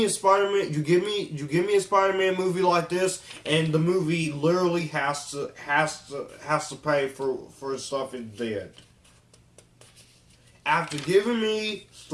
a Spider-Man, you give me a Spider-Man movie like this, and the movie literally has to pay for stuff it did. After giving me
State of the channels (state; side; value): identical; both; correlation 1.00